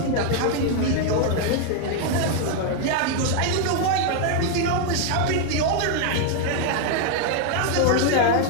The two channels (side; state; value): both; different; correlation 0.00